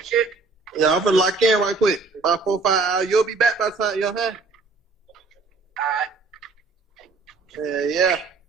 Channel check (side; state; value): left; quieter; 4.0 dB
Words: Yeah, I'm finna lock in right quick. About 4 or 5 hours. You'll be back by the time, you know what I'm saying? Alright. Yeah.